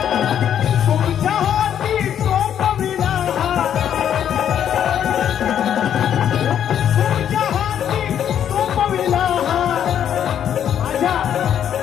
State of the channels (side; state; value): right; quieter; 9.5 dB